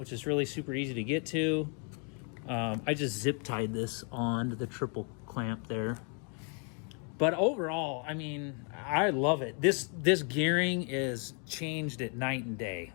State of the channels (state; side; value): quieter; right; 39.0 dB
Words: is really super easy to get to. I just zip tied this on to the triple clamp there. But overall, I mean, I love it. This gearing is changed at night and day.